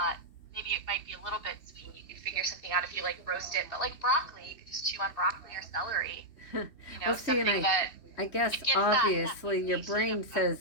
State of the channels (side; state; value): right; late; 3.1 ms